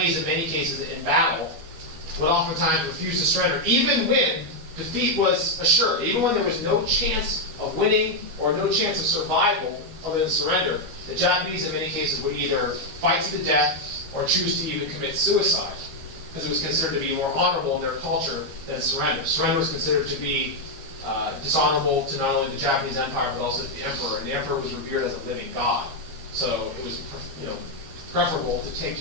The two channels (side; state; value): left; late; 12 ms